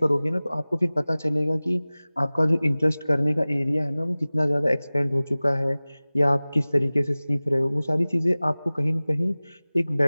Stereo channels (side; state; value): both; inverted; correlation -0.99